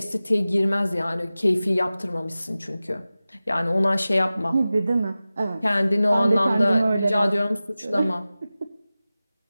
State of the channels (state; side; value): inverted; both; correlation -0.96